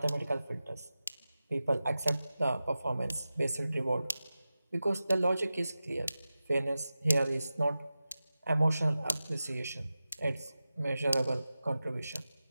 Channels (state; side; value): inverted; both; correlation -0.94